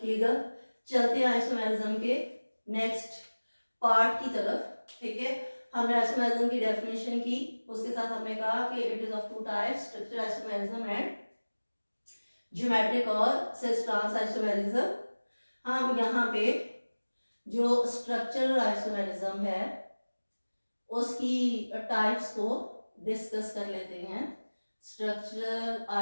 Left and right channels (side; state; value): both; inverted; correlation -1.00